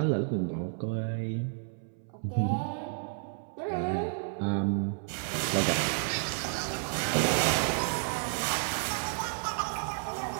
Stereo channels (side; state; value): left; silent; 57 dB below the other